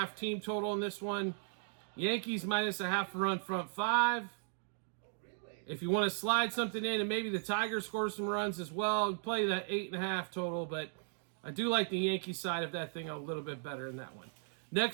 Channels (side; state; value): left; silent; digital silence